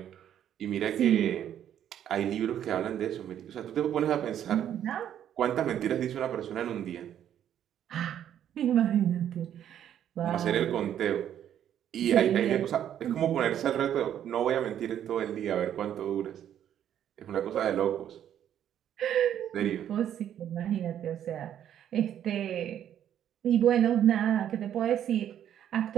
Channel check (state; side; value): quieter; left; 10.2 dB